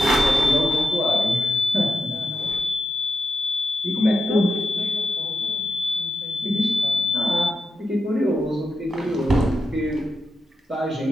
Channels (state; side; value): normal; both; correlation 0.88